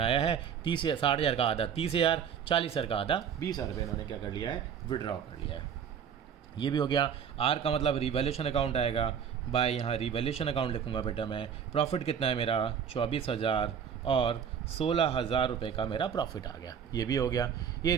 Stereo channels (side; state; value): left; quieter; 7.8 dB